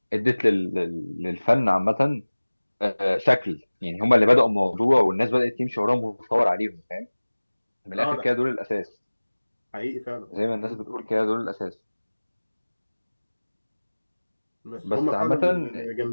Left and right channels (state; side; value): inverted; both; correlation -1.00